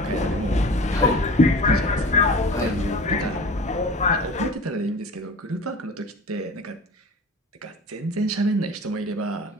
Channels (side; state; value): both; normal; correlation 0.38